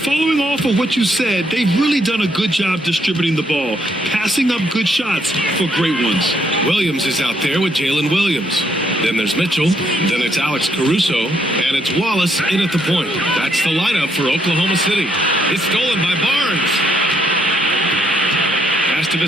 off of what you said, they've really done a good job distributing the ball, passing up good shots for great ones. Williams is out there with Jalen Williams. Then there's Mitchell. Then it's Alex Caruso. And it's Wallace in at the point. That's the lineup for Oklahoma City. It's stolen by Barnes. Pass to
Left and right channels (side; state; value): both; normal; correlation 0.72